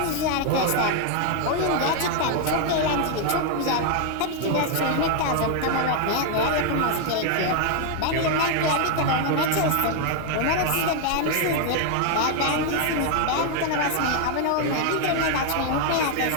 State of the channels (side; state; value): both; different; correlation 0.00